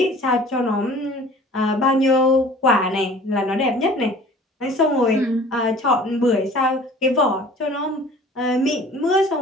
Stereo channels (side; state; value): both; normal; correlation 0.47